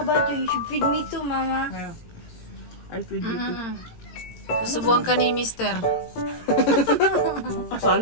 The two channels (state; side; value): late; right; 18 ms